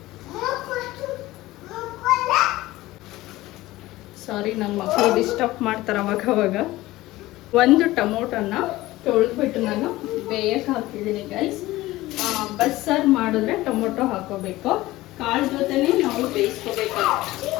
ಸಾರಿ, ನನ್ನ ಮಕ್ಕಳು ಡಿಸ್ಟರ್ಬ್ ಮಾಡ್ತಾರೆ ಅವಾಗ. ಒಂದು ಟೊಮೊಟೊನ ತೊಳೆದ್ಬಿಟ್ಟು ನಾನು ಬೇಯಕ್ಕೆ ಹಾಕಿದ್ದೀನಿ ಗೈಸ್. ಬಸ್ಸಾರು ಮಾಡಿದ್ರೆ ಟೊಮೊಟೊ ಹಾಕೋಬೇಕು. ಕಾಳು ಜೊತೆನೇ ನಾವು ಬೇಯಿಸ್ಕೋಬೇಕು.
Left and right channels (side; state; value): right; quieter; 17.8 dB